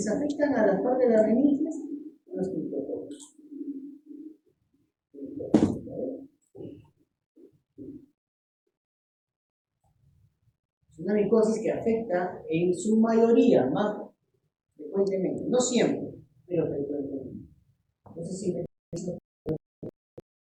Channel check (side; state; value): both; identical; correlation 1.00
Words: afectan a las partes de las meninges son los criptococcus. Es una micosis que afecta en su mayoría, más frecuentemente, no siempre, pero frecuentemente. Entonces, siempre.